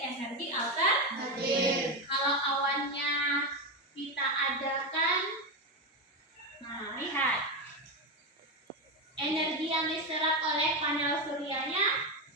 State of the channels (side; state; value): both; normal; correlation 0.12